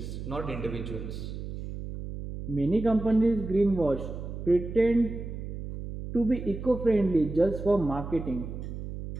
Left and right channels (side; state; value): right; noise; hum, 8 dB below the sound